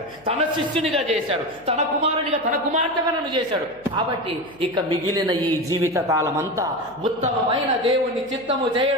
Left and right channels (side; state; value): left; noise; hum, 28 dB below the sound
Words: తన శిష్యునిగా చేశాడు, తన కుమారునిగా, తన కుమార్తెగా నన్ను చేశాడు. కాబట్టి ఇక మిగిలిన ఈ జీవిత కాలమంతా ఉత్తమమైన దేవుని చిత్తము